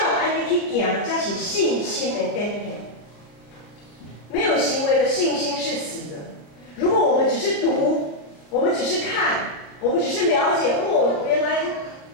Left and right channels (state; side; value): late; right; 33 ms